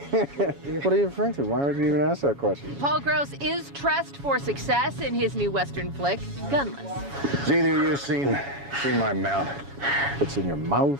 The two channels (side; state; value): left; late; 7.2 ms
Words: are you referring to? Why would you even ask that question? Paul Gross is dressed for success in his new Western flick, Gunless. Has either of you seen my mouth? It's in your